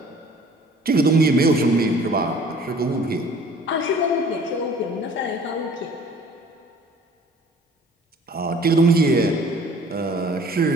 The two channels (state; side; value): normal; both; correlation 0.51